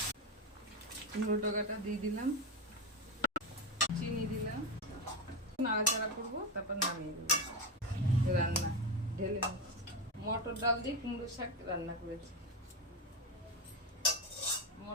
কুমড়ো ডগাটা দিয়ে দিলাম, চিনি দিলাম, নাড়াচাড়া করবো, তারপর নামিয়ে দেবো। রান্না ঢেলে নেব। মটর ডাল দিয়ে কুমড়ো শাক রান্না করেছি,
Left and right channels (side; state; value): both; normal; correlation 0.14